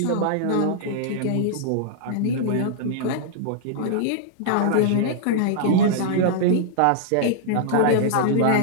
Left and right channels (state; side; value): different; both; correlation -0.01